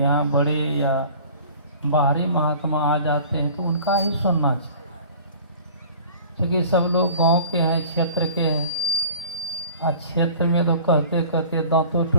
बड़े या बाहरी महात्मा आ जाते हैं तो उनका ही सुनना चाहिए, क्योंकि सब लोग गांव के हैं, क्षेत्र के हैं। और क्षेत्र में तो कहते कहते दांतों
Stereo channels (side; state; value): both; inverted; correlation -0.45